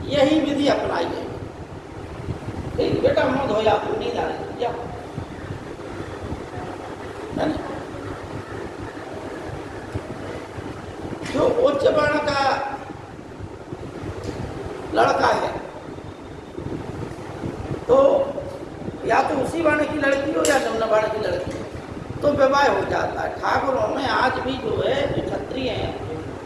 यही विधि अपनाई है। ठीक, बेटा मौत हो जाती, नींद आ रही क्या, जो उच्च वर्ण का लड़का है तो या तो उसी वर्ण की लड़की हो या निम्न वर्ण की लड़की हो, तो विवाह हो जाता है। ठाकुरों में आज भी जो है जो क्षत्रिय हैं,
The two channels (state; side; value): identical; both; correlation 1.00